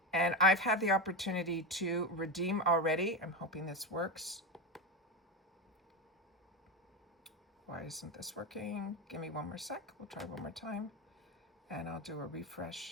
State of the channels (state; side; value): normal; both; correlation 0.17